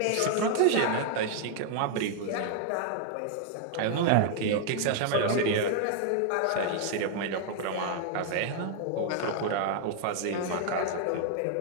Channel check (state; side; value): different; both; correlation -0.01